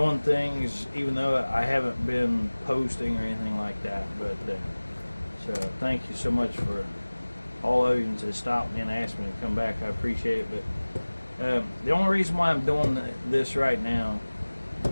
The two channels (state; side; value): inverted; both; correlation -1.00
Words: things even though I haven't been posting or anything like that. But so thank you so much for all of you that stopped me and asked me to come back. I appreciate it. But the only reason why I'm doing this right now